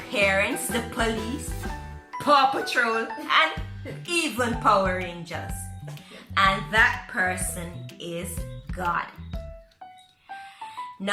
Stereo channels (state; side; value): identical; both; correlation 1.00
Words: parents, the police, Paw Patrol, and even Power Rangers. And that person is God.